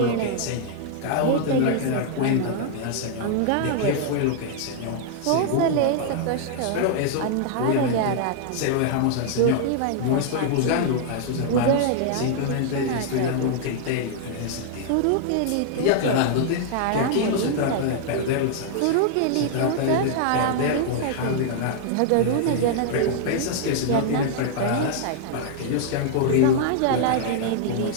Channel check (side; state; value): both; different; correlation -0.01